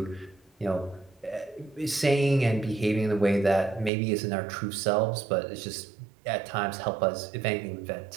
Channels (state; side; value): drops out; left; at 3.9 s